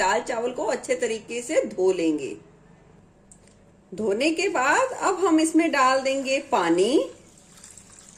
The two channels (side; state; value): both; identical; correlation 1.00